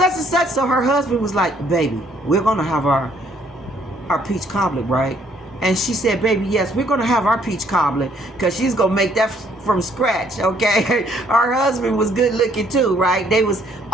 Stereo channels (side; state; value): both; normal; correlation 0.65